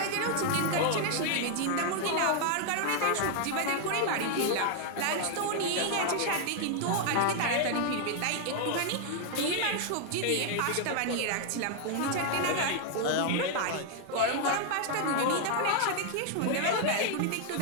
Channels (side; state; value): both; different; correlation 0.00